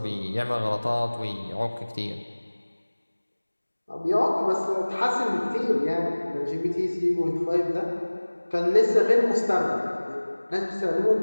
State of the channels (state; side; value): inverted; both; correlation -1.00